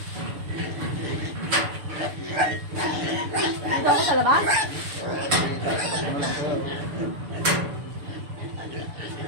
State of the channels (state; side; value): late; left; 6.8 ms